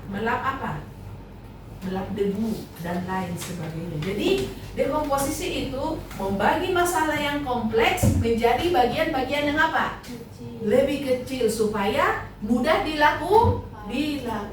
Melap apa? Melap debu dan lain sebagainya. Jadi dekomposisi itu membagi masalah yang kompleks menjadi bagian-bagian yang apa? Lebih kecil supaya mudah dilakukan,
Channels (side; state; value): both; identical; correlation 1.00